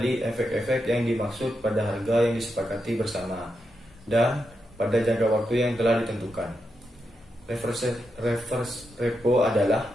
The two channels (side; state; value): both; normal; correlation 0.85